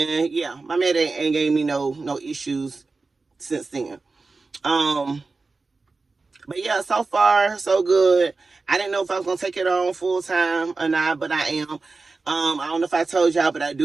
yeah, my man ain't gave me no issues since then. But yeah, so far so good. I didn't know if I was gonna take it on full time or not, but I am. I don't know if I told y'all, but I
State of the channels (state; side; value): quieter; left; 3.9 dB